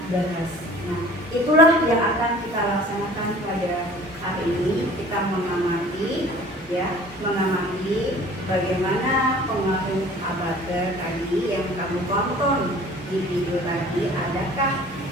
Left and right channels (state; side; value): normal; both; correlation 0.47